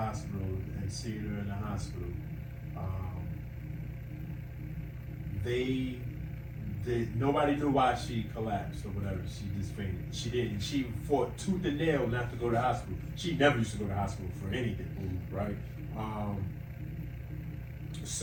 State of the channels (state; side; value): identical; both; correlation 1.00